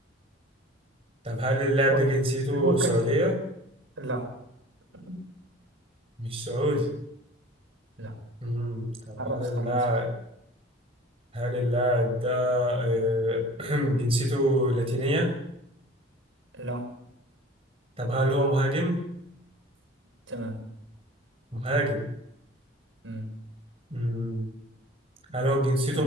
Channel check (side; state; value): both; normal; correlation 0.43